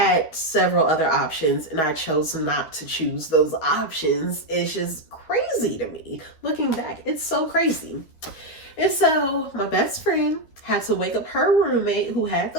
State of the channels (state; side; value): late; right; 12 ms